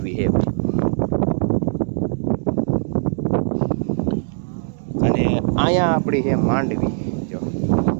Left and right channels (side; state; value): left; silent; digital silence